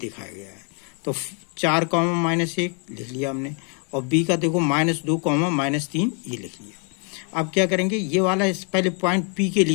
गया है। तो 4, -1 लिख लिया हमने और B का देखो -2, -3 ये लिख लिया। अब क्या करेंगे, ये वाला इस पहले पॉइंट P के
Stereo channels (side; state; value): right; quieter; 39.4 dB